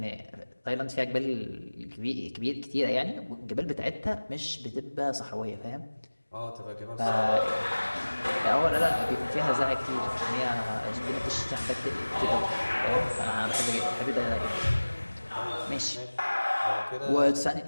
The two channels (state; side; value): inverted; both; correlation -1.00